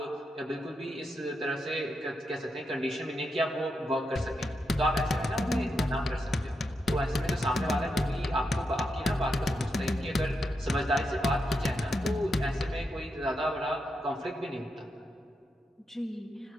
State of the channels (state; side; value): normal; both; correlation 0.84